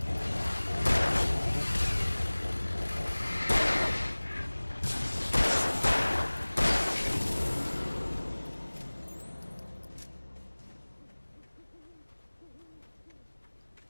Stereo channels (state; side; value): inverted; both; correlation -1.00